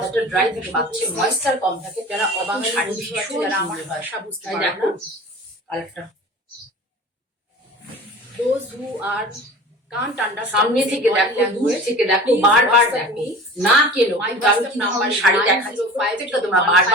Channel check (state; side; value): normal; both; correlation 0.39